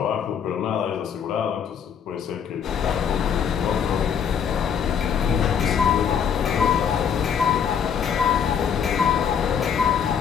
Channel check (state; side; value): quieter; right; 7.6 dB